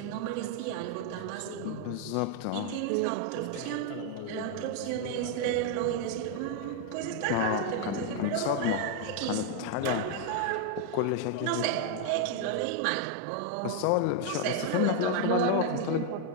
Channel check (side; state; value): both; different; correlation 0.00